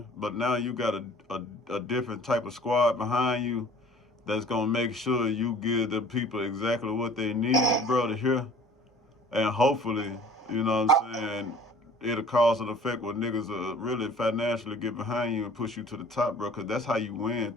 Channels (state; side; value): normal; both; correlation 0.49